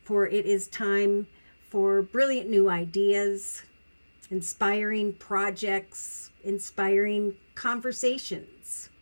For it is time for brilliant new ideas, inspiring projects, inspiring conversations.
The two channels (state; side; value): inverted; both; correlation -1.00